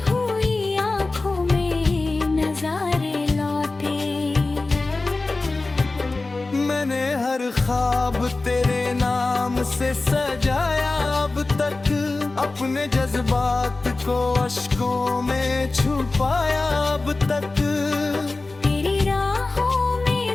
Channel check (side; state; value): right; quieter; 3.4 dB